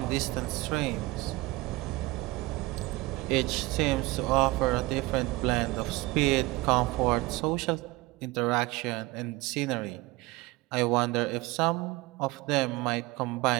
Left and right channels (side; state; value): left; quieter; 21.0 dB